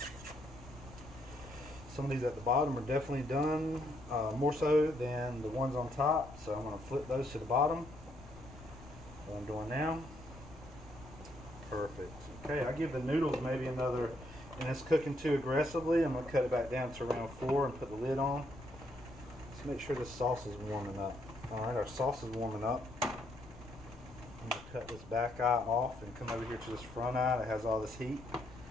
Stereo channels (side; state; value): left; noise; rumble, 18 dB below the sound